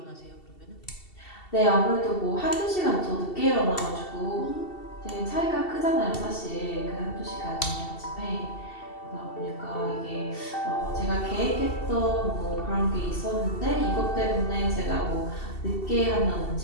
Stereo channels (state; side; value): late; right; 2.7 ms